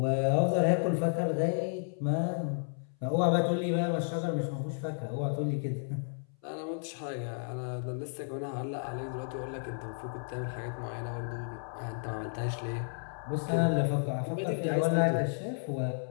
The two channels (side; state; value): right; silent; 56 dB below the other